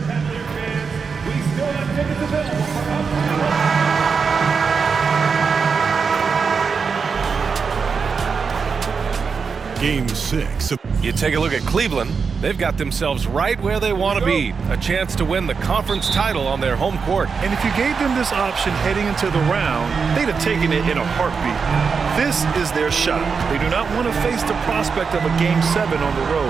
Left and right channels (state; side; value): quieter; left; 5.5 dB